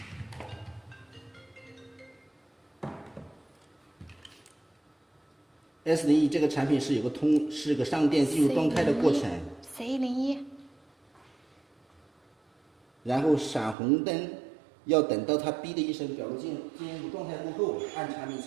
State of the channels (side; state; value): left; drops out; at 13.8 s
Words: S01这个产品是有个是个上电进入状态的过程。C01。然后闪红灯，要等到它哔的一声表露进入状态过后，按产品